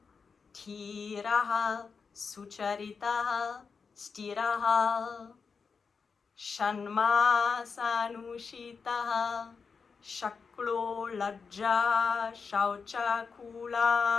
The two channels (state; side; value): quieter; right; 5.4 dB